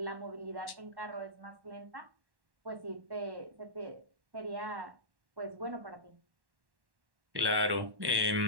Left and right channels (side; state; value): left; late; 1.1 ms